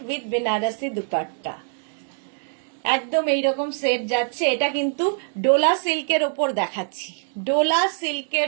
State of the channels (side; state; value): left; silent; digital silence